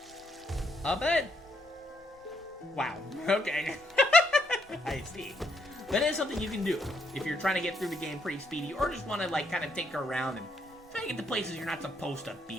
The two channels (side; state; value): both; normal; correlation 0.75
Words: But wow. Okay. I see. That is something you can do if you're trying to get through the game pretty speedy, or just want to like kind of tinker around and try to get to places you're not supposed to